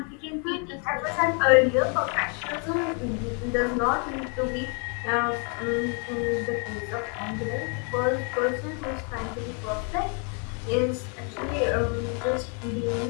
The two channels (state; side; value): quieter; right; 38.5 dB